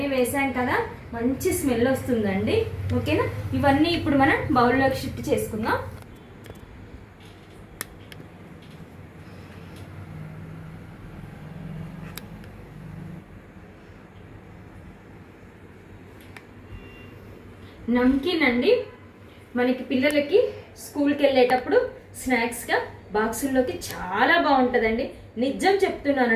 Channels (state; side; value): identical; both; correlation 1.00